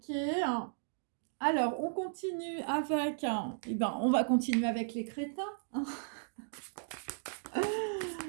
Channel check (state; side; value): silent; left; digital silence